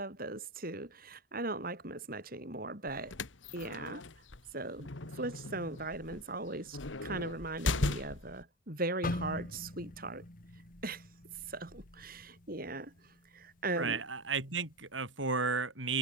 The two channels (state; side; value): normal; both; correlation 0.21